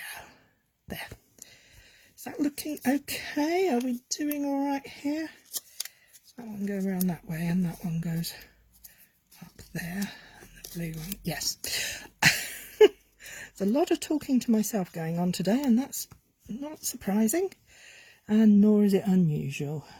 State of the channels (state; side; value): identical; both; correlation 1.00